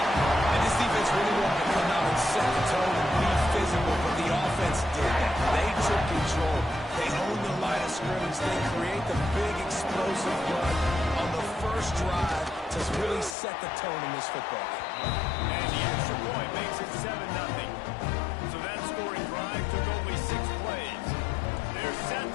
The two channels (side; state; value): right; drops out; at 13.4 s